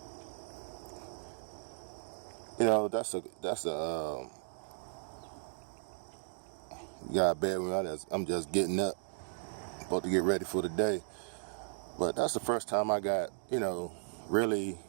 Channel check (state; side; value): silent; left; digital silence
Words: you know, you got bad when I'm just getting up, about to get ready for the day. But that's the first time I got, really